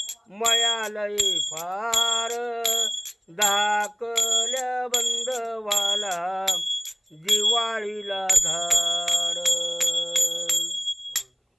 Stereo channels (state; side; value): identical; both; correlation 1.00